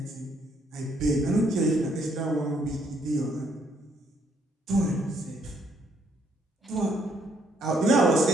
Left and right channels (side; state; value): both; normal; correlation 0.70